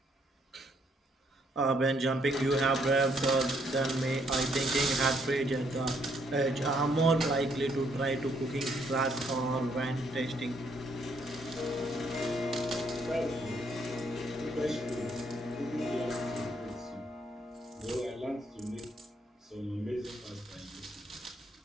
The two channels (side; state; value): both; normal; correlation 0.70